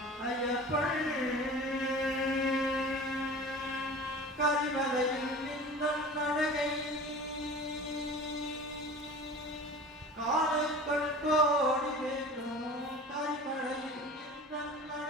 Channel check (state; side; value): normal; both; correlation 0.39